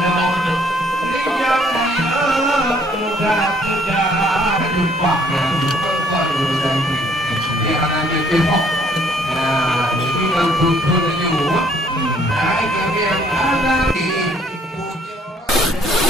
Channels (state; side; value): normal; both; correlation 0.63